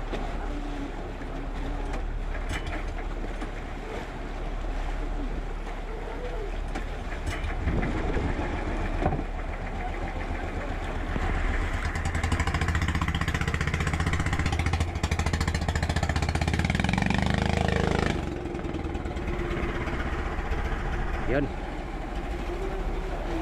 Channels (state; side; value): identical; both; correlation 1.00